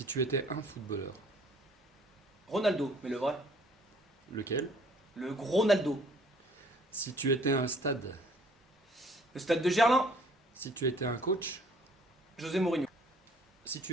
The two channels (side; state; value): both; normal; correlation 0.57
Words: tu étais un footballeur, Ronaldo, mais le vrai. lequel? Le gros Ronaldo. Si tu étais un stade, Le stade de Gerland. si tu étais un coach, José Mourinho. si